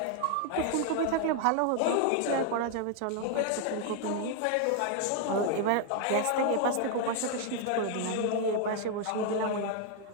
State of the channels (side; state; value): both; different; correlation 0.00